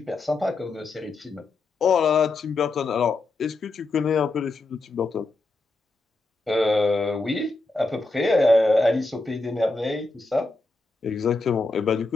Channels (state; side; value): quieter; right; 3.3 dB